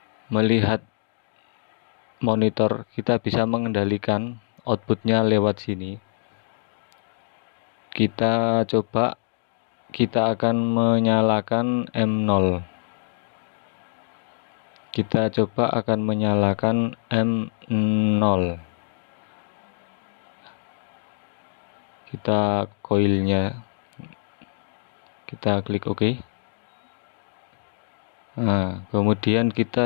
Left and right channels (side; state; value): right; silent; digital silence